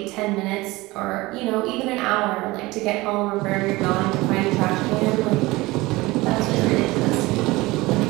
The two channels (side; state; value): left; quieter; 20.9 dB